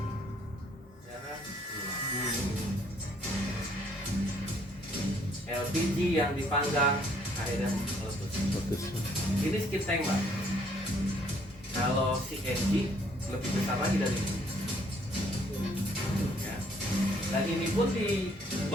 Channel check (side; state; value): both; normal; correlation 0.64